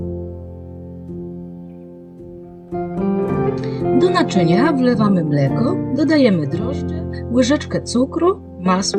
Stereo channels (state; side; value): identical; both; correlation 1.00